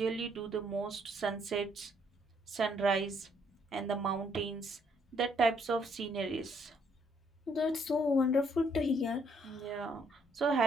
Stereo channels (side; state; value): both; normal; correlation 0.69